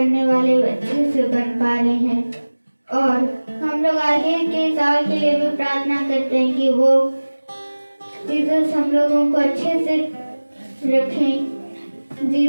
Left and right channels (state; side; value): inverted; both; correlation -1.00